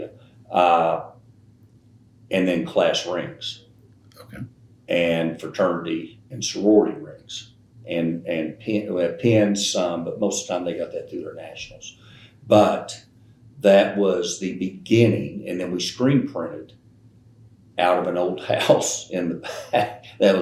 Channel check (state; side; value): identical; both; correlation 1.00